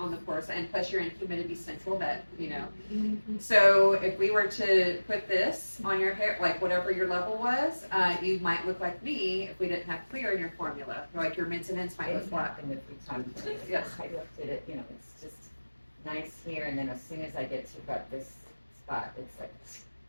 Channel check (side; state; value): both; inverted; correlation -1.00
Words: the pore side, and plus you're in humidity central, that, you know. So if we were to put this on your hair, like whatever your level was, you might look like me if we didn't have clear in your formula. Like your mints and ends might look It's black. happened a few times. Yes. I looked at it, you know, it's just nice here, and then as soon as I get to about this spot, it's like,